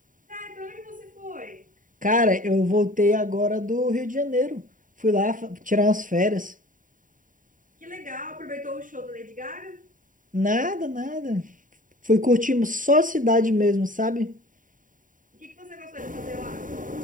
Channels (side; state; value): left; late; 0.39 ms